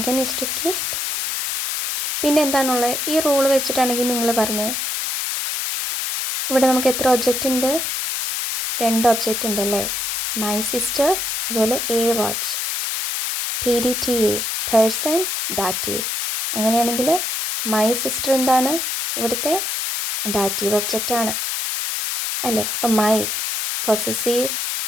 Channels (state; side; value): noise; left; hiss, 2 dB below the sound